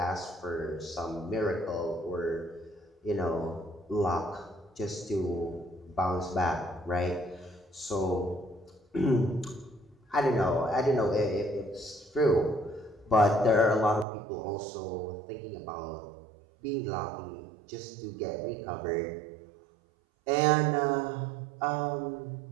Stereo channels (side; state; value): left; drops out; at 14.1 s